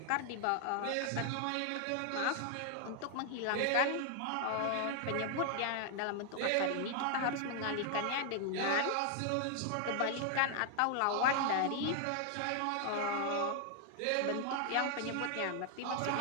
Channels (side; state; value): both; different; correlation 0.00